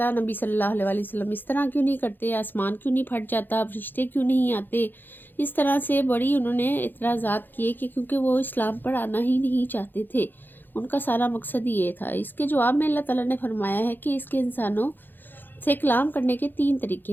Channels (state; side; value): late; right; 0.092 ms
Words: نبی صلی اللہ علیہ وآلہ وسلم اس طرح کیوں نہیں کرتے، آسمان کیوں نہیں پھٹ جاتا، فرشتے کیوں نہیں آتے۔ اس طرح سے بڑی انہوں نے اعتراضات کیے کہ کیونکہ وہ اسلام پر آنا ہی نہیں چاہتے تھے، ان کا سارا مقصد یہ تھا۔ اس کے جواب میں اللہ تعالیٰ نے فرمایا ہے کہ اس کے انسانوں سے کلام کرنے کے 3 طریقے